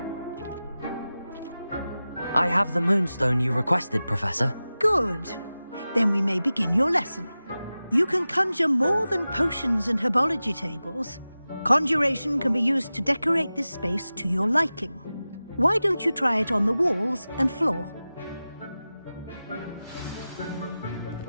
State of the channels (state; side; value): inverted; both; correlation -0.95